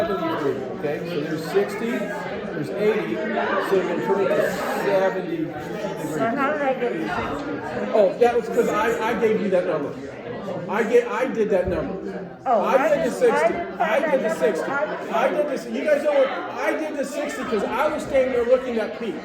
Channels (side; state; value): both; identical; correlation 1.00